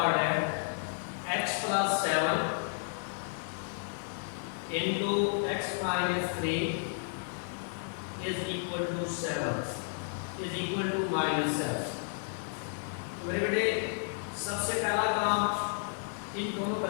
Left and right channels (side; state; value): right; silent; digital silence